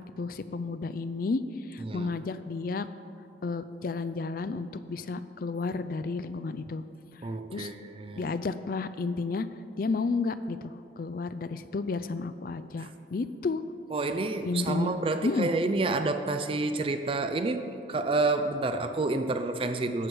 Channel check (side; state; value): both; normal; correlation 0.49